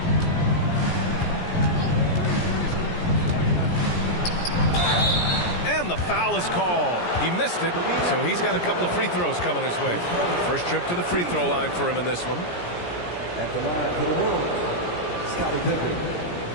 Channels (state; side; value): late; right; 17 ms